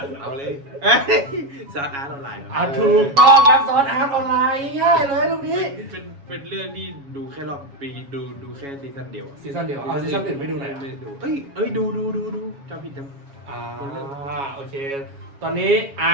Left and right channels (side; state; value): left; late; 7.2 ms